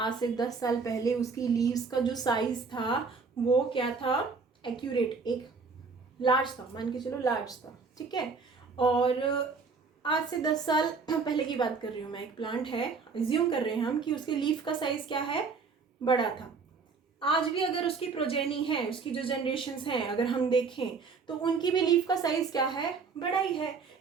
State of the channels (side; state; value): left; quieter; 4.9 dB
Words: से 10 साल पहले उसकी लीव्स का जो साइज था वो क्या था, एक्यूरेट, एक लार्ज था, मान के चलो लार्ज था, ठीक है। और आज से 10 साल पहले की बात कर रही हूँ मैं, एक प्लांट है, एज्यूम कर रहे हैं हम कि उसके लीफ का साइज क्या है, बड़ा था। आज भी अगर उसकी प्रोजेनी है, उसकी जो जनरेशन्स हैं अगर हम देखें तो उनकी भी लीफ का साइज क्या है, बड़ा ही है।